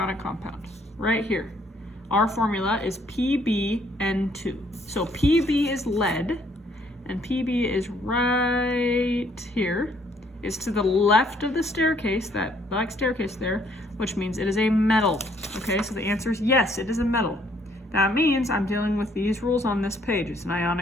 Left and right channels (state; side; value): normal; both; correlation 0.65